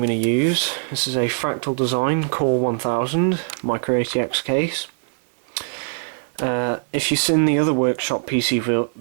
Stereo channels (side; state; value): left; silent; digital silence